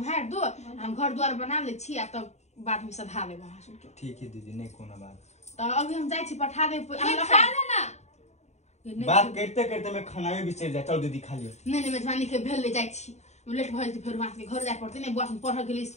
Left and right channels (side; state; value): right; late; 0.32 ms